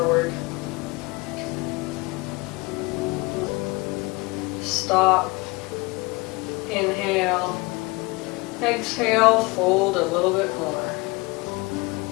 Stop. Inhale. Exhale, fold a little bit more.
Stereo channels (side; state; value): right; quieter; 24.7 dB